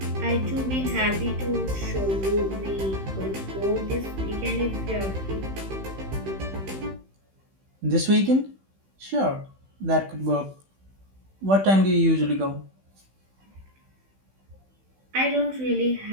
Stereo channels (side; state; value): left; late; 15 ms